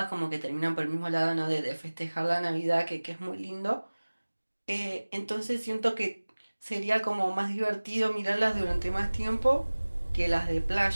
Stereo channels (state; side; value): inverted; both; correlation -1.00